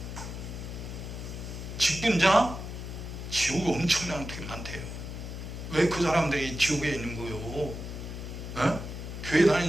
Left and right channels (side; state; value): left; noise; hum, 8 dB below the sound